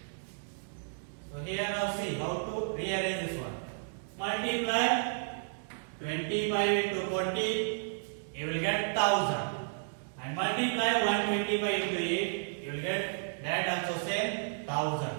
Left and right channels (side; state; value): left; silent; digital silence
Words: So here now see how to rearrange this one. Multiply 25 into 40, you will get 1000. And multiply 125 into 8, you you will get that also same 1000.